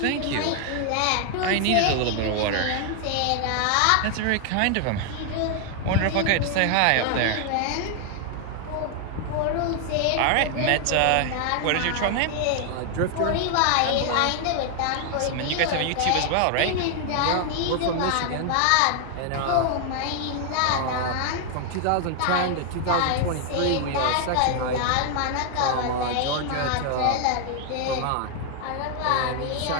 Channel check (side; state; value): both; different; correlation 0.00